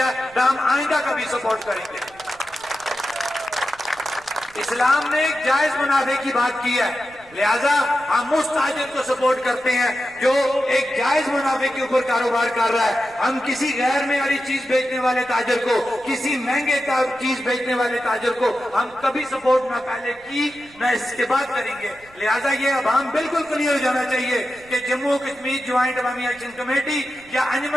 نہ ہم آئندہ کبھی سپورٹ کریں گے. اسلام نے ایک جائز منافع کی بات کی ہے, لہذا ہم اس تاجر کو سپورٹ کرتے ہیں جو ایک جائز منافع کے اوپر کاروبار کر رہا ہے. ہم کسی غیر معیاری چیز بیچنے والے تاجر کو, کسی مہنگے چیز بیچنے والے تاجر کو ہم کبھی سپورٹ نہ پہلے کی نہ اس کے بعد کریں گے. لہذا یہ عوام بالکل کلیئر ہو جانا چاہیے کہ جموں کشمیر جوائنٹ عوامی ایکشن کمیٹی یا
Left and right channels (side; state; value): right; noise; rumble, 26 dB below the sound